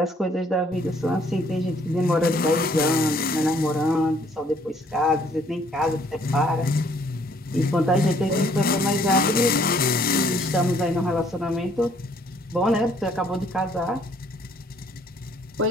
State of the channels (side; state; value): both; normal; correlation 0.63